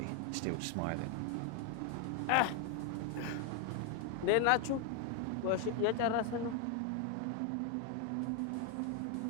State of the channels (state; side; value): different; both; correlation 0.01